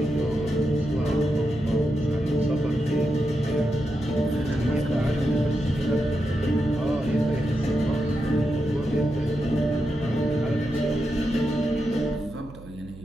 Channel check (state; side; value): noise; right; hum, 18 dB below the sound